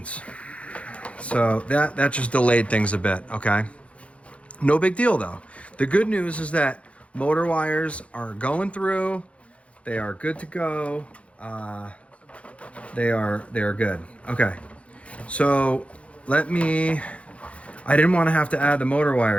So that just delayed things a bit, okay? No big deal though. The good news is that motor wires are going through. They are good to go. They are good. Okay. So I didn't want to have to add the motor wire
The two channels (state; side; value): late; right; 0.063 ms